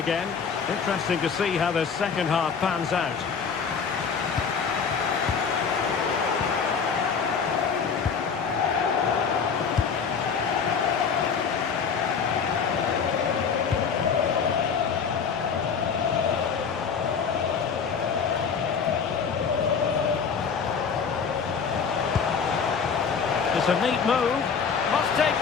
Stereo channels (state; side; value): quieter; right; 6.1 dB